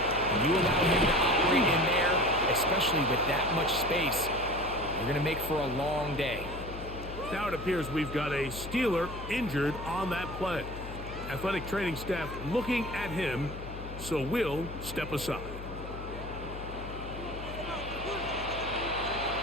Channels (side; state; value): left; noise; hum, 10 dB below the sound